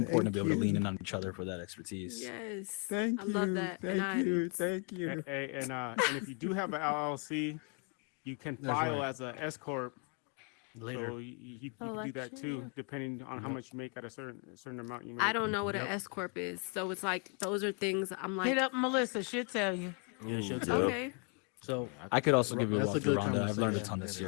to Thank be able to lean you. in on each other for that expertise. Yes, Thank I love you. that, and Thank you. Thank you. And if you do have an LLC, you can That's file right. as a S corp. Later. So you can do that Election, too, yeah. depending on how Yep. much you make at a certain amount you make. I don't know what an Yep. S corp is, so it's like those are things I'm Hit like, up Melissa. She'll tell you. Yeah, she'll Ooh, tell yep. you. okay, So I could also give you a that's a walkthrough, good Rhonda. I've learned a conversation. ton That this is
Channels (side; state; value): right; quieter; 36.1 dB